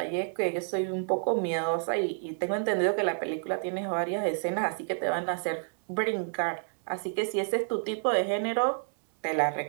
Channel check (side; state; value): left; silent; digital silence